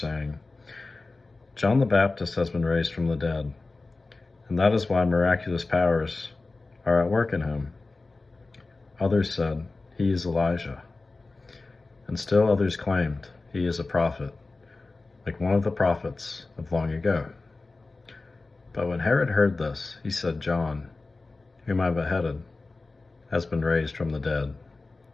"John the Baptist has been raised from the dead, and that is why miraculous powers are at work in him." Others said, "He is Elijah." And still others claimed, "He is a prophet, like one of the prophets of long ago." But when Herod heard this, he said, "John, whom I beheaded, has been raised from the dead."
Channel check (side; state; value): right; quieter; 3.5 dB